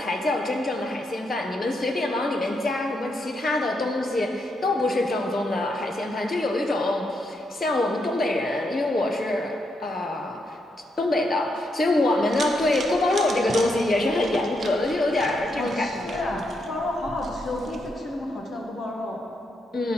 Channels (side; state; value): both; normal; correlation 0.80